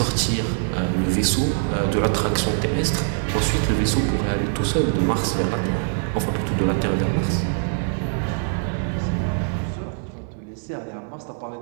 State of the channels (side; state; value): left; silent; digital silence